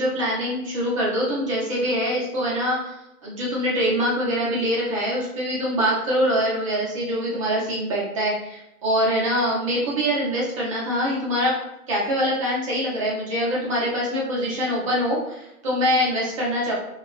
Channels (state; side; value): normal; both; correlation 0.23